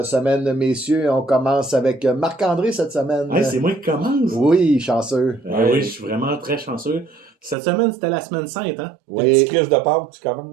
semaine, messieurs. On commence avec Marc-André cette semaine. Hey, c'est moi qui commence. Oui, chanceux. Oui, je suis vraiment très chanceux. Cette semaine, c'était la semaine sainte, hein? Des Oui. petits crises de Pâques, tu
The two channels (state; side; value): drops out; left; at 7.6 s